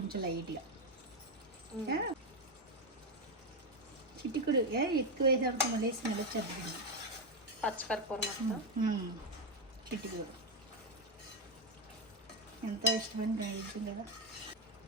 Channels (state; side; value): normal; both; correlation 0.06